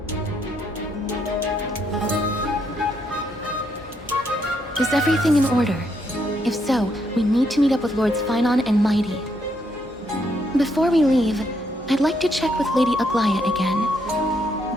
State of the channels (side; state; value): both; normal; correlation 0.75